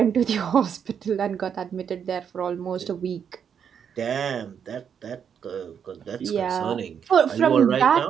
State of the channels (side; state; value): left; quieter; 7.7 dB